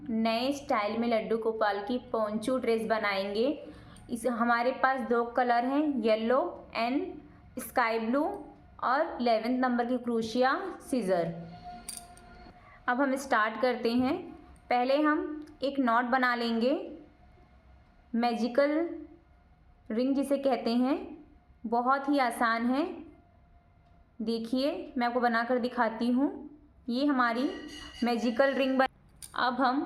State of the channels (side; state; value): both; identical; correlation 1.00